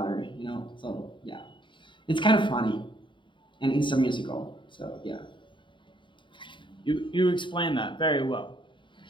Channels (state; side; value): late; right; 0.23 ms